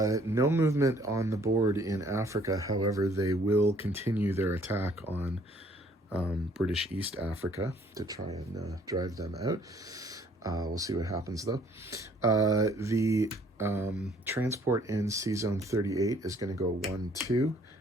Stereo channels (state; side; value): normal; both; correlation 0.61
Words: movement on the board in Africa. However, they will continue their attack on British East Africa to try and drive them out. We'll see what happens though. The transport in Sea Zone 38 is going to go 1-2,